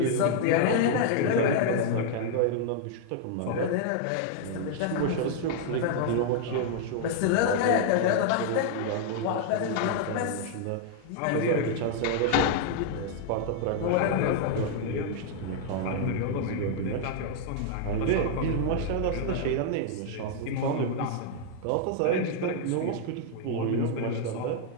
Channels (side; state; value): both; different; correlation -0.01